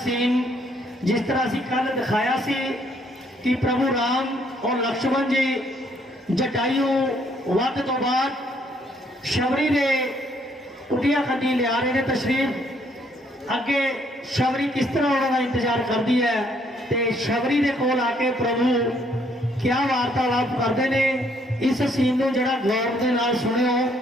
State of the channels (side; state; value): both; normal; correlation 0.68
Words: सीन जिस तरह असीं कल दिखाया सी कि प्रभु राम और लक्ष्मण जी जटायू वध तो बाद शबरी ने कुटिया खड्डी लिया रहे हैं तशरीफ। अगे शबरी किस तरह उन्होंने इंतजार करती है तो शबरी के कोल आके प्रभु क्या वार्तालाप करते हैं। इस सीन को जरा गौर के नाल सुनियो।